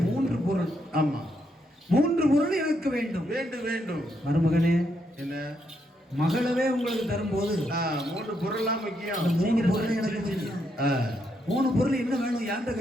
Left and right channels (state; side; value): normal; both; correlation 0.78